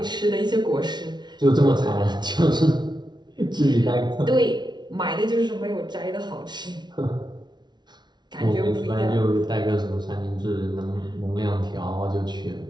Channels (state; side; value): late; left; 0.20 ms